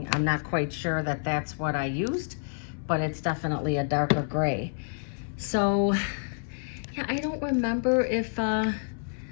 I'm not quite sure that that's what I used, but it's definitely a darker gray. So yeah, I don't remember if, I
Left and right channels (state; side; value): silent; right; 59 dB below the other